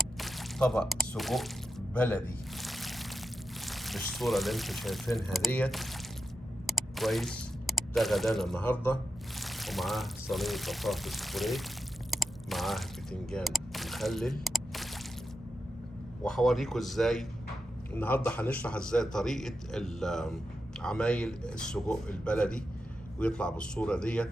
طبق سجق بلدي بالصورة اللي انتم شايفينها ديت. كويس، ده غدانا النهارده، ومعاه صينية بطاطس بوريه، معاه بتنجان مخلل. وهوريكم ازاي النهارده هنشرح ازاي طريقة عمايل السجق البلدي، ويطلع بالصورة ديت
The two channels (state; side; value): normal; both; correlation 0.90